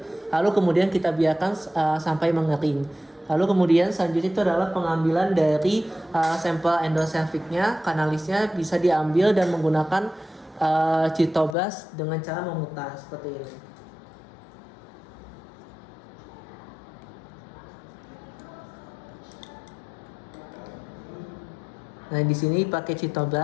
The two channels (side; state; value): right; drops out; at 11.6 s